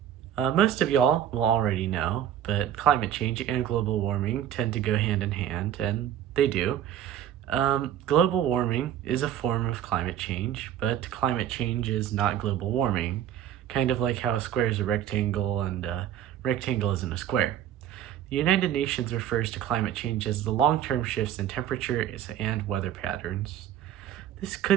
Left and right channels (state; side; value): quieter; left; 10.6 dB